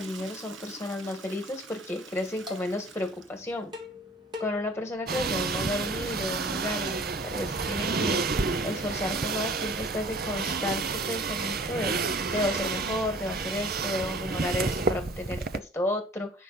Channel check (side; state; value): both; normal; correlation 0.49